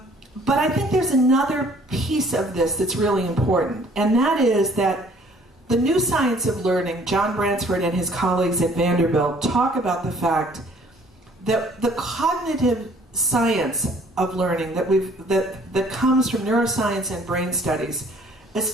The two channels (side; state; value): both; normal; correlation 0.57